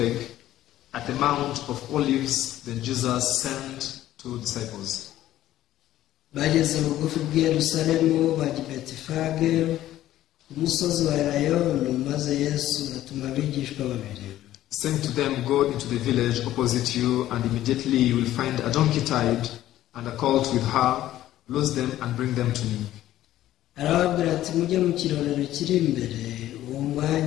at the Mount of Olives. Then Jesus sent two disciples. Bageze bugufi bw'i Yerusalemu bajya i Betifage umusozi wa Elayono, maze Yesu atuma abigishwa babiri. Saying to them, go into the village opposite you, and immediately you will find a donkey tied and a colt with her. Loose them and bring them to me. Arababwira ati mujye mu kirorero kiri imbere, uwo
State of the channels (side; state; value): right; quieter; 13.7 dB